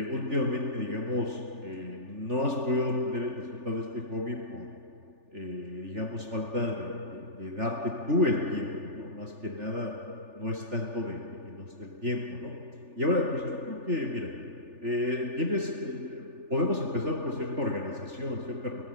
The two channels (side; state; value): left; late; 3.4 ms